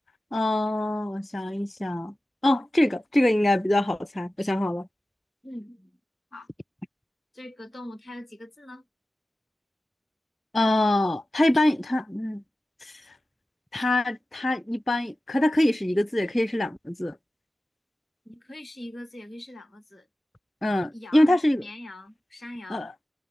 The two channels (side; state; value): both; normal; correlation 0.95